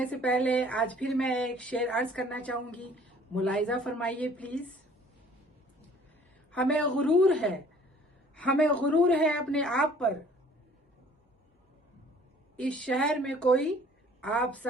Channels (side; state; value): both; normal; correlation 0.54